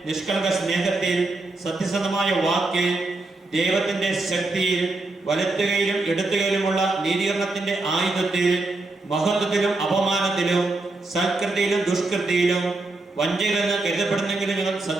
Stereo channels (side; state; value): left; quieter; 3.1 dB